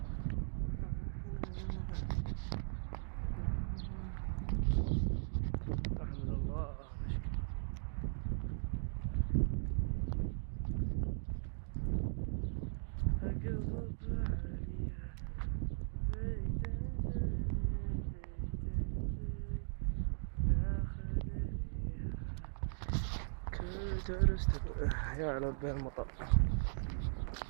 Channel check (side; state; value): left; silent; digital silence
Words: أحمد الله درست يا لبي المطر.